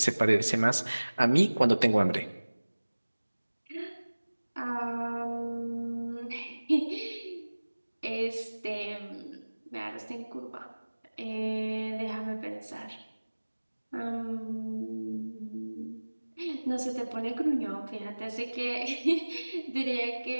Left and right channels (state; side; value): inverted; both; correlation -1.00